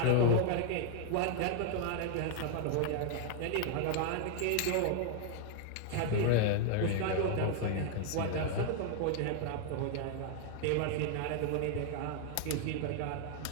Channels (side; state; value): both; different; correlation 0.00